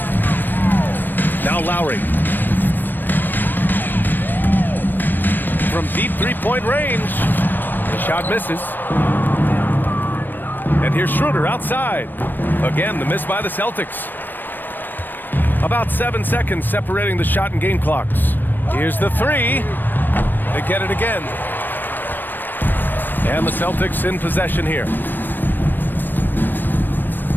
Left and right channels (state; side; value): late; right; 0.092 ms